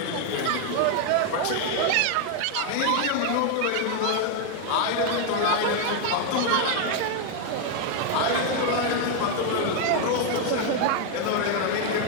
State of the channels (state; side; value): different; both; correlation 0.01